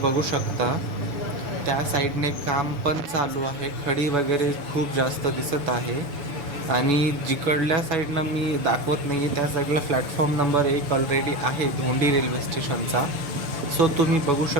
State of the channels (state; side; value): late; left; 7.0 ms